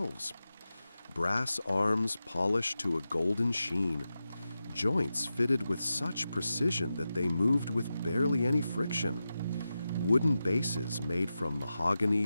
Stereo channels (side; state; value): both; inverted; correlation -0.92